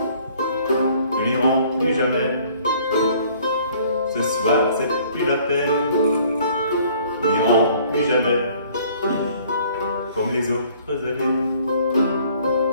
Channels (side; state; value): both; inverted; correlation -0.57